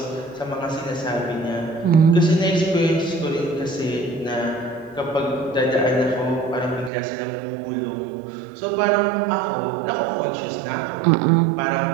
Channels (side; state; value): left; drops out; at 6.9 s